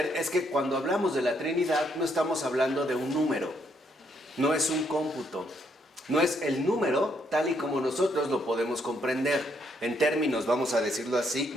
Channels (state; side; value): normal; both; correlation 0.73